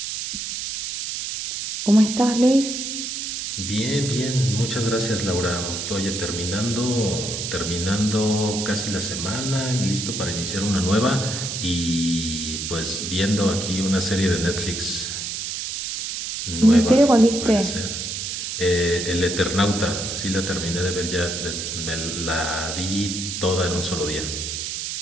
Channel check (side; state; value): right; noise; hiss, 4 dB below the sound